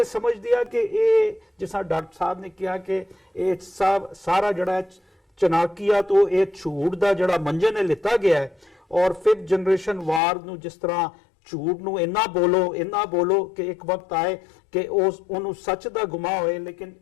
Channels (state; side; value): drops out; right; at 10.2 s